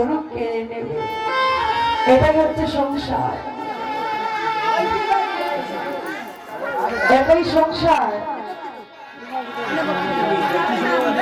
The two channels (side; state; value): both; identical; correlation 1.00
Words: কেড়ে নেবে। এটাই হচ্ছে সংসার, এটাই সংসার।